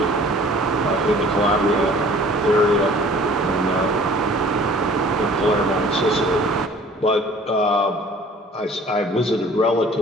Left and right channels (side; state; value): both; normal; correlation 0.50